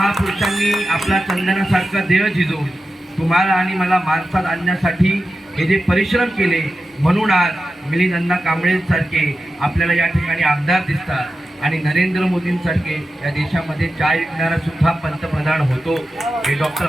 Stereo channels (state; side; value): normal; both; correlation 0.92